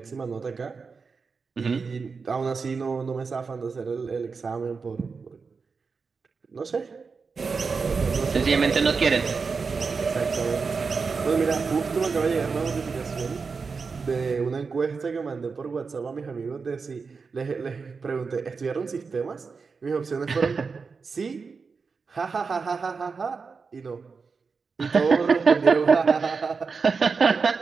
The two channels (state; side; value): quieter; left; 5.0 dB